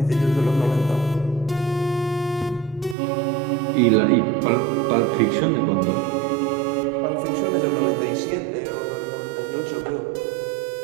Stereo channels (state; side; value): drops out; left; at 3.0 s